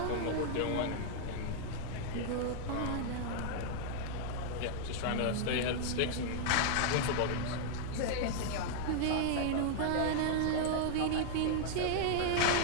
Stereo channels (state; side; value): different; both; correlation -0.01